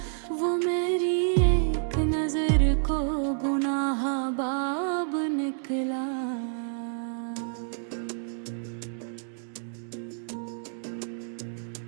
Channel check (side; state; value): left; silent; digital silence